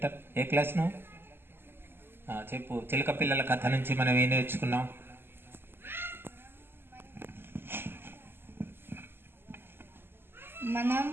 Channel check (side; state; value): left; late; 0.11 ms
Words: ఏ క్లాస్ నువ్వు? చెప్పు. చిలుక పిల్లల కథ నుంచి మనం ఏం నేర్చుకున్నాం? మనం